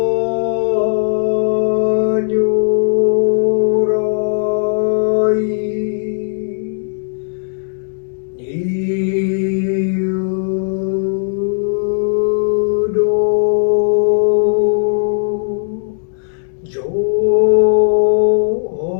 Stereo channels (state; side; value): silent; right; digital silence